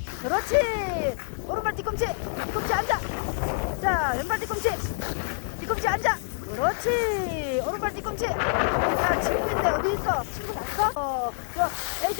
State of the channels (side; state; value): right; silent; 60 dB below the other